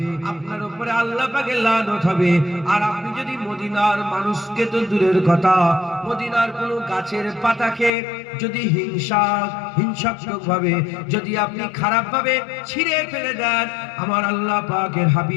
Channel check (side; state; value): right; drops out; at 7.9 s